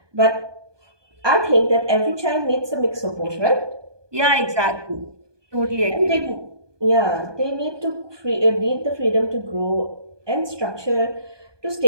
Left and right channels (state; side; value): late; left; 1.2 ms